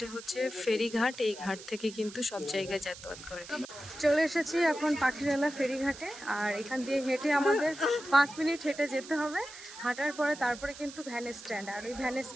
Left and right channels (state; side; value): noise; right; hiss, 15 dB below the sound